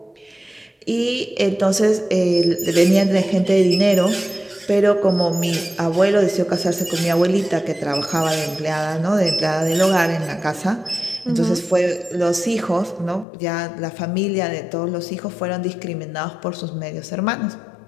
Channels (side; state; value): right; drops out; at 13.2 s